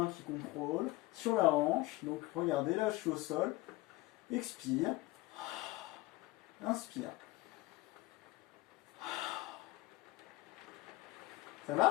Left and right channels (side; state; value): right; quieter; 19.2 dB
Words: qui contrôle, sur la hanche, donc regardez, là je suis au sol, expire, inspire. Ça